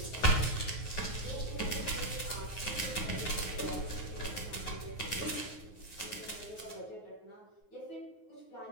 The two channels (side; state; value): right; late; 9.5 ms